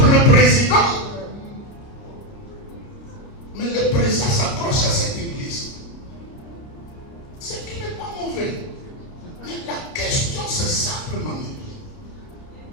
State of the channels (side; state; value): right; late; 30 ms